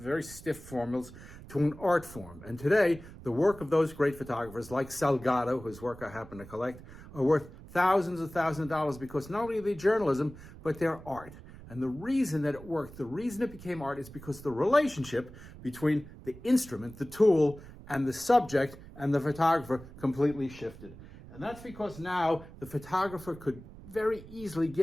stiff formulas, to an art form. And today, the work of those great photographers, like Salgado, whose work I happen to collect, are worth thousands of dollars because not only are they journalism, but they're art. And the reason that it worked, the reason it became art is because the relationship between the instrument, the tool, and the subject and the photographer completely shifted. And that's because now the photographer could very easily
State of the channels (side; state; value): right; noise; rumble, 17 dB below the sound